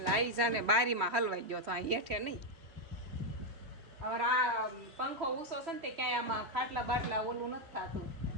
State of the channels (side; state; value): left; late; 3.1 ms